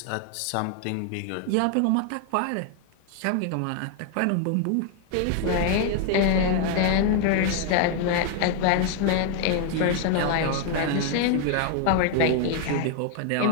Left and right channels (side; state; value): both; different; correlation 0.00